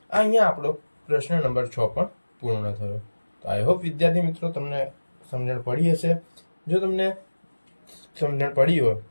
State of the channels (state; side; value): inverted; both; correlation -1.00